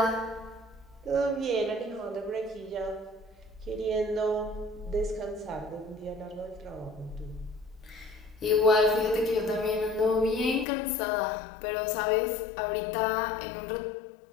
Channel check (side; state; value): right; drops out; at 10.7 s